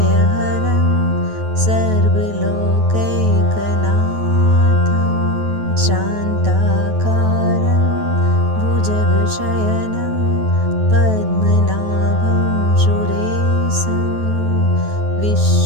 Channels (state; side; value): late; left; 9.3 ms